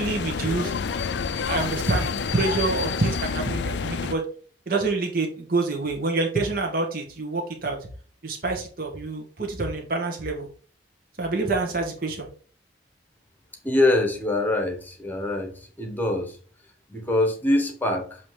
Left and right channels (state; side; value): normal; both; correlation 0.42